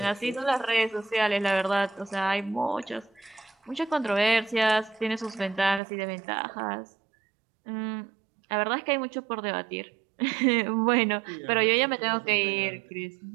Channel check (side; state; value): left; drops out; at 5.8 s